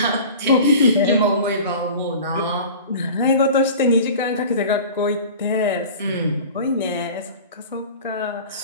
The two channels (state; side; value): inverted; both; correlation -0.39